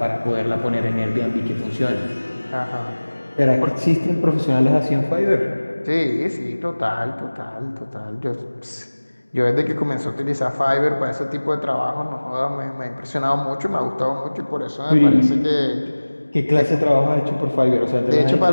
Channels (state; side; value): inverted; both; correlation -1.00